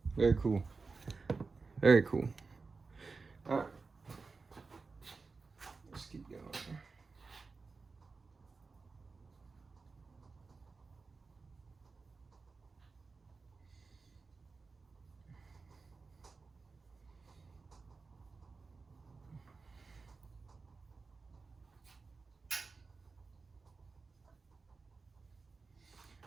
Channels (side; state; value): left; quieter; 4.3 dB